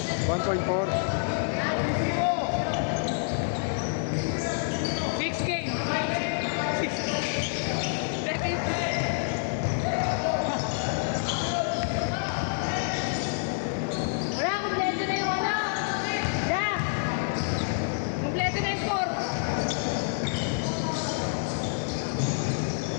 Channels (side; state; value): right; silent; 59 dB below the other